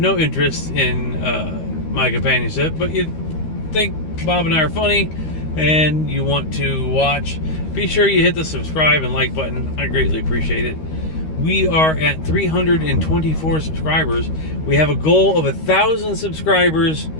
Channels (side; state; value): right; late; 13 ms